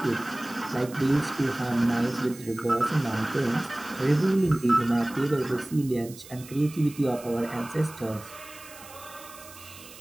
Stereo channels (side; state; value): right; noise; hiss, 18 dB below the sound